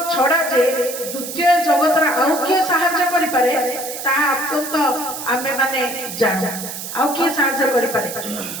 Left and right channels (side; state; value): right; noise; hiss, 8 dB below the sound